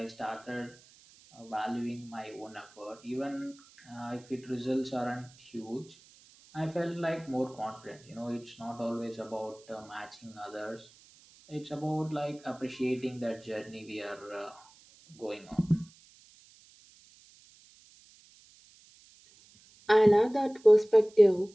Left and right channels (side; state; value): right; noise; hiss, 26 dB below the sound